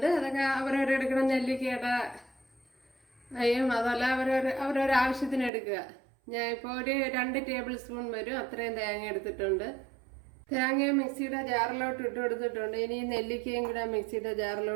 അതൊക്കെ അവരവരെടുക്കണം. നെല്ലിക്കയുടെ അതല്ല അവരവരുടെ ആവശ്യത്തിന് എടുക്കുക. ഞാൻ ഇപ്പോൾ ഒരു 2 ടേബിൾ സ്പൂൺ വരും അത്രയും തേങ്ങ എടുത്തിട്ടുണ്ട്. തേങ്ങ മിക്സിയുടെ ജാറിലോട്ട് ഇട്ട് കൊടുത്തിട്ടുണ്ട്. ഇനി നെല്ലിക്കയും കൂടെ മിക്സിയുടെ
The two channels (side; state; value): left; drops out; at 5.5 s